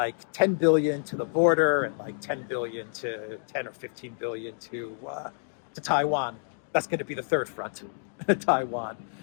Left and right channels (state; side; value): silent; right; digital silence